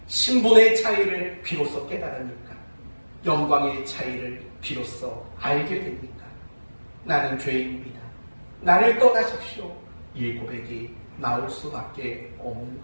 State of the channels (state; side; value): inverted; both; correlation -1.00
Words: 신분의 차이를 비로소 깨달으니까, 영광의 차이를 비로소 알게 됩니까? 나는 죄인입니다. 나를 떠나십시오. 이 고백이 나올 수밖에 없는